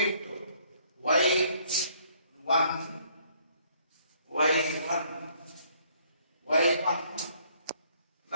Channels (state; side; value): inverted; both; correlation -0.64